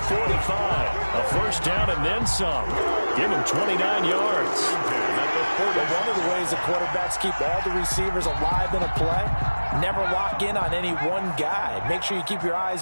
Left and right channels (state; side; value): inverted; both; correlation -1.00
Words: A first down and then some. Give him 29 yards. One of the ways the quarterbacks keep all the receivers alive in a play, never lock in on any one guy. Make sure you keep your